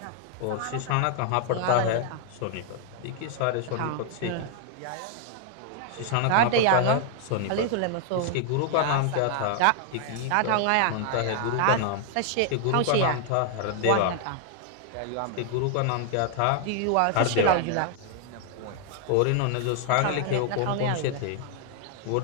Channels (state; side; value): different; both; correlation 0.00